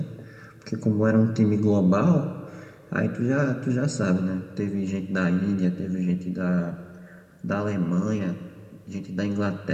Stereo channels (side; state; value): both; identical; correlation 1.00